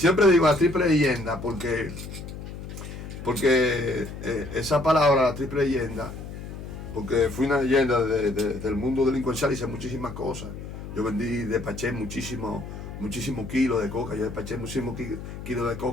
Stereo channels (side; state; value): left; noise; hum, 10 dB below the sound